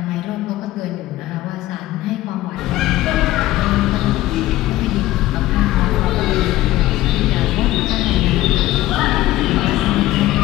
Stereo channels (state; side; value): quieter; right; 15.9 dB